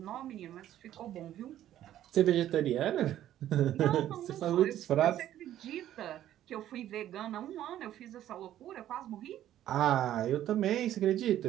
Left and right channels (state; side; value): quieter; left; 12.2 dB